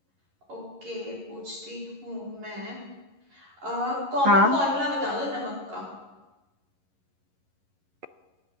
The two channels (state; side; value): late; left; 11 ms